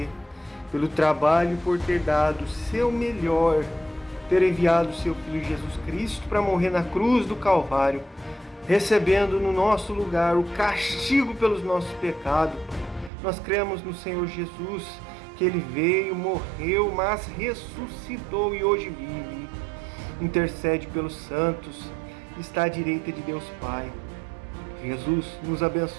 pelo trabalho, por ter dado o seu melhor, ter enviado o seu Filho Jesus Cristo para morrer na cruz do Calvário, recebendo no nosso lugar o castigo pelos nossos pecados. Nós cremos no Senhor Jesus, que Ele veio, morreu, mas ressuscitou e hoje vive. Intercede pelos santos, está à direita de Deus Pai. Jesus, nos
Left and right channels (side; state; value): left; drops out; at 13.1 s